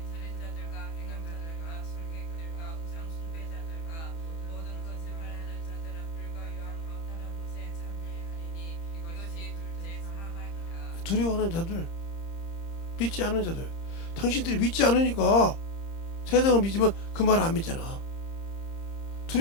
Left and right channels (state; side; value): late; right; 30 ms